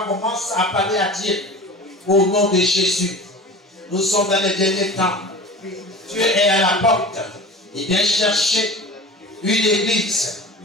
commence à parler à Dieu au nom de Jésus. Nous sommes dans les derniers temps. Dieu est à la porte. Il vient chercher une église.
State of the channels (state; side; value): normal; both; correlation 0.36